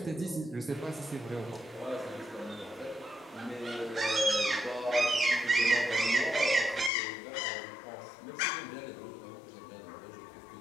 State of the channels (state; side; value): drops out; right; at 6.9 s